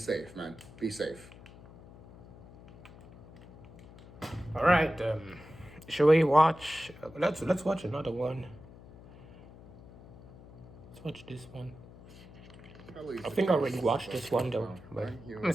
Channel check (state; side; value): noise; left; hum, 20 dB below the sound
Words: man. Be safe. All right. Shall we watch? Let's watch another one. Let's watch this one. Hello, I think I already watched this one though, but I'm